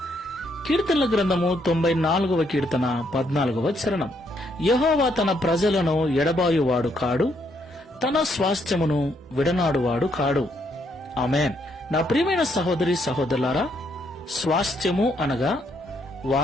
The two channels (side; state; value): both; normal; correlation 0.73